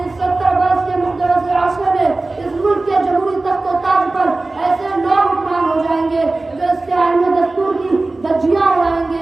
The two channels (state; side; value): quieter; left; 3.2 dB